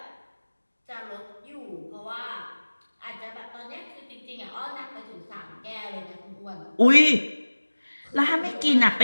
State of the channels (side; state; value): both; inverted; correlation -1.00